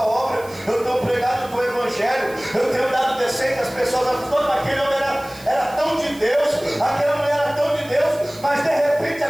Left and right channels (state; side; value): noise; right; hiss, 21 dB below the sound